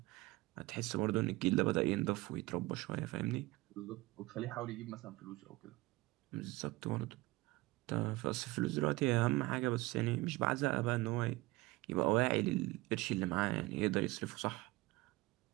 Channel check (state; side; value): quieter; left; 21.0 dB